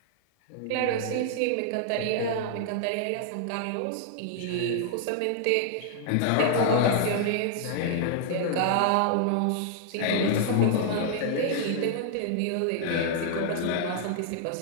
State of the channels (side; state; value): both; different; correlation -0.01